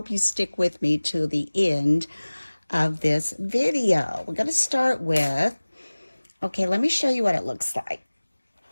you stick with me to the end of this video. We're going to start with, okay, let me show you what it looks like.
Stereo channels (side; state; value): both; inverted; correlation -1.00